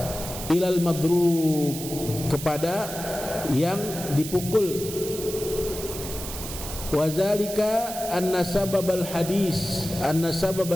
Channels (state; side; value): noise; right; hiss, 9 dB below the sound